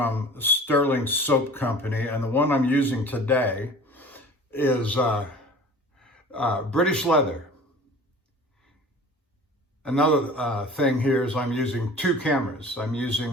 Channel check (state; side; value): normal; both; correlation 0.42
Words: Sterling Soap Company, and the one I'm using today is British Leather. Another thing here is I'm using 2 cameras. I'm using